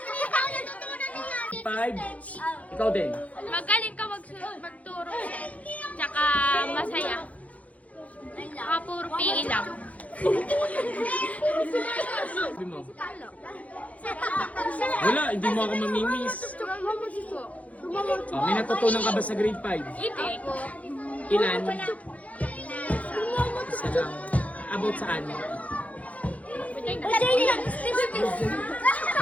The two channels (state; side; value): late; right; 0.068 ms